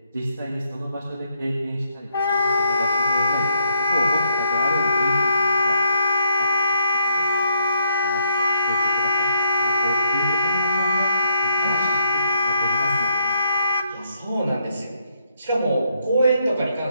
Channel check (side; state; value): both; inverted; correlation -0.74